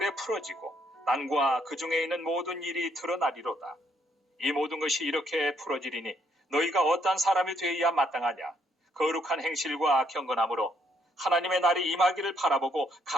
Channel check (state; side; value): normal; both; correlation 0.71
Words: 풀어지고 땅과 그 중에 있는 모든 일이 드러나리로다. 이 모든 것이 이렇게 풀어지리니 너희가 어떠한 사람이 되어야 마땅하냐. 거룩한 행실과 경건함으로 하나님의 날이 임하기를 바라보고